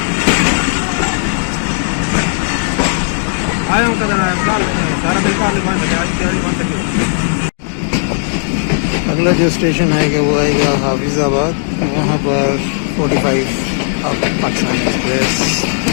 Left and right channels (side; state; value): right; silent; digital silence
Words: अगला जो स्टेशन आएगा वो आएगा हाफिजाबाद। वहाँ पर 45 अब पाकिस्तान एक्सप्रेस